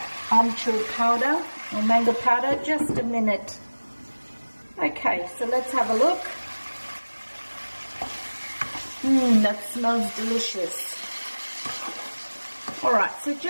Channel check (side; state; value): both; inverted; correlation -1.00